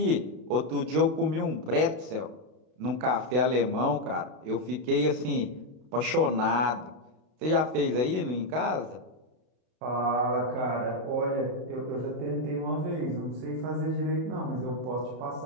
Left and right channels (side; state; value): left; late; 32 ms